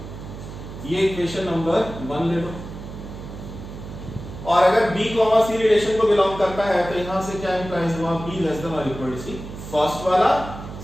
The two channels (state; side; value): noise; right; hum, 11 dB below the sound